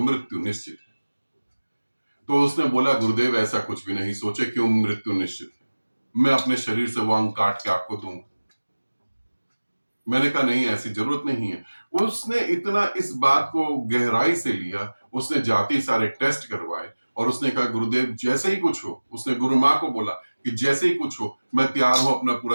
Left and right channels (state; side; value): inverted; both; correlation -1.00